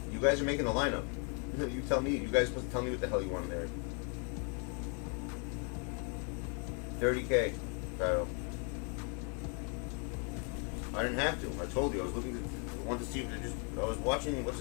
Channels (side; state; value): right; quieter; 38.7 dB